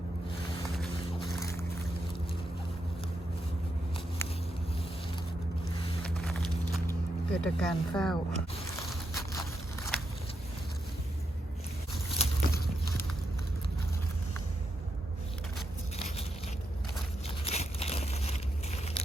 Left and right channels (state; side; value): normal; both; correlation 0.83